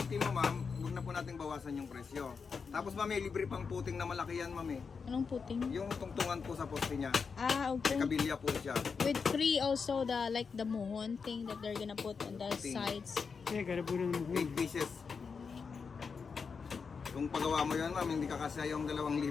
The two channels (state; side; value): quieter; right; 5.5 dB